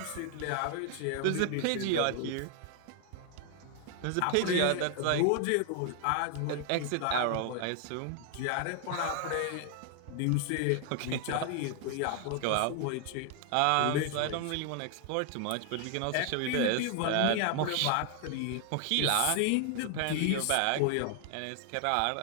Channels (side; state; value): both; different; correlation 0.00